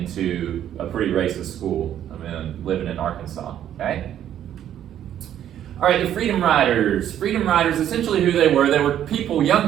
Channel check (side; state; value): left; quieter; 10.7 dB